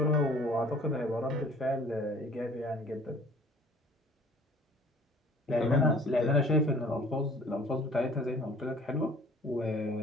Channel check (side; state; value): both; normal; correlation 0.52